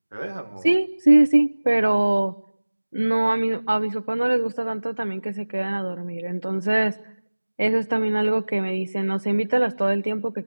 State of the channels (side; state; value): both; inverted; correlation -1.00